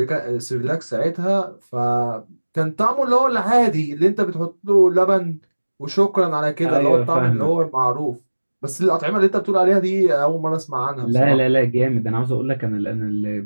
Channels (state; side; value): inverted; both; correlation -1.00